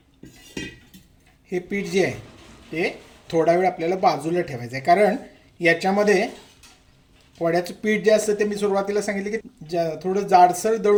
हे पीठ जे आहे ते थोडा वेळ आपल्याला बाजूला ठेवायचं आहे, कारण याच्यामध्ये वड्याचं पीठ जे असतं ते मी सुरुवातीला सांगितलं की थोडं जाडसर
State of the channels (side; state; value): both; identical; correlation 1.00